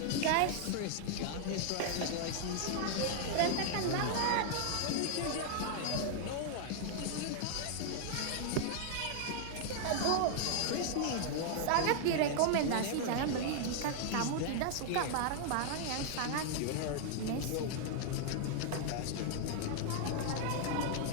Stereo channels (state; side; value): different; both; correlation 0.00